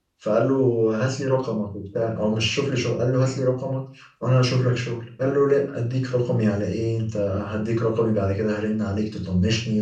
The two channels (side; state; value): both; identical; correlation 1.00